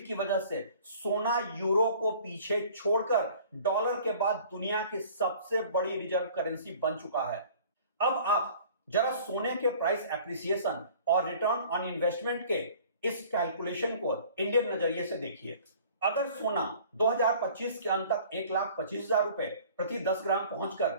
की वजह से सोना यूरो को पीछे छोड़कर डॉलर के बाद दुनिया की सबसे बड़ी रिजर्व करेंसी बन चुका है। अब आप जरा सोने के प्राइस एप्रिसिएशन और रिटर्न ऑन इन्वेस्टमेंट के इस कैलकुलेशन को इंडियन नजरिए से देखिए। अगर सोना 2025 के अंत तक 1,25,000 रुपए प्रति 10 ग्राम पहुंचकर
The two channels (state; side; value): inverted; both; correlation -0.49